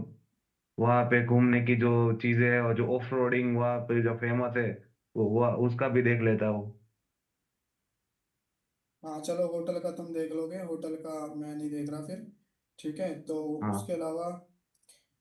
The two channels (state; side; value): identical; both; correlation 1.00